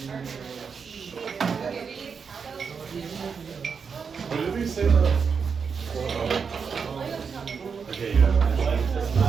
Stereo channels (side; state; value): left; quieter; 5.9 dB